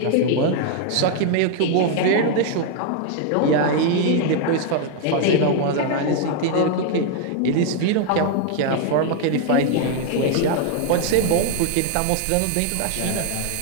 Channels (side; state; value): both; different; correlation 0.00